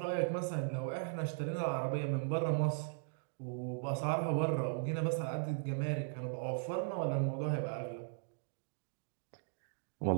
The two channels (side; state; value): left; silent; digital silence